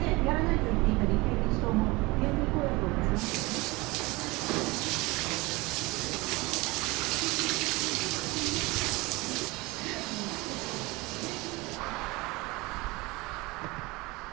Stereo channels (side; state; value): left; quieter; 23.3 dB